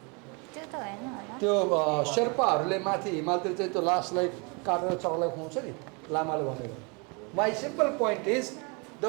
त्यो त हैन होला, त्यो शेर्पाहरूले माथि हिमालतिर चाहिँ त्यो लासलाई काटेर चलाउन खुवाउँछ नि, लामाले भनेको। My simple point is, the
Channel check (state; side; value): quieter; left; 32.1 dB